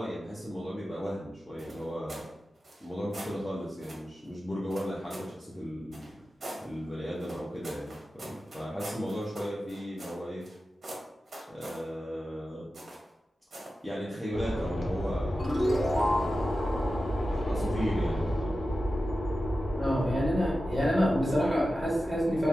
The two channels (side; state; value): both; normal; correlation 0.93